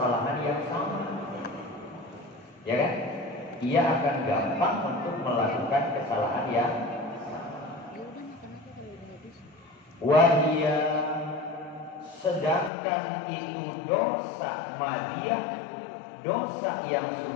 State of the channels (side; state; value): right; drops out; at 12.7 s